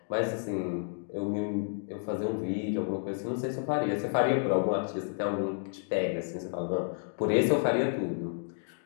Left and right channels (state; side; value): silent; right; digital silence